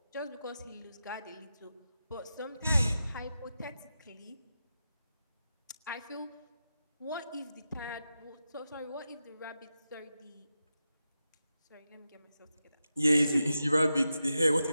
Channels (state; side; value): inverted; both; correlation -0.89